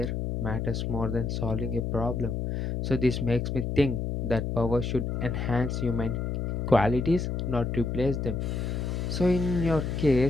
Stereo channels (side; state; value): left; noise; hum, 2 dB below the sound